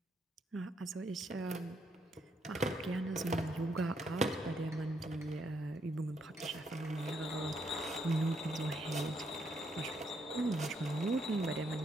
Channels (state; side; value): normal; both; correlation 0.75